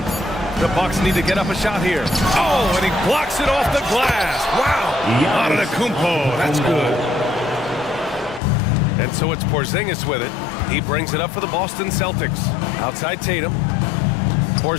The Bucks need to get up a shot here. Oh, and he blocks it off the glass. Wow. Antetokounmpo, that's good. And so it's Porzingis with it. He brings it up for the Boston Celtics. Outside Tatum.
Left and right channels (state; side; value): drops out; right; at 8.4 s